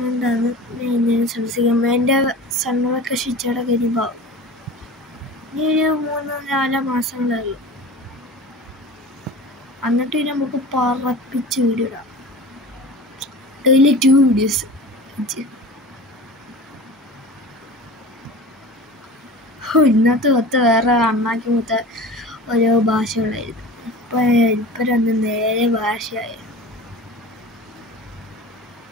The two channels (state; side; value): normal; both; correlation 0.36